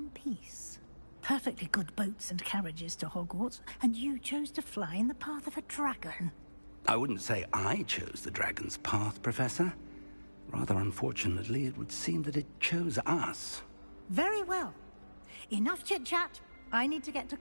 piece. Perfectly good boats and carriages to Hogwarts, and you chose to fly in the path of a dragon. I wouldn't say I chose the dragon's path, Professor. Rather unfortunately, it would seem that it chose us. Very well. Enough chit-chat. I need to get to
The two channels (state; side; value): inverted; both; correlation -1.00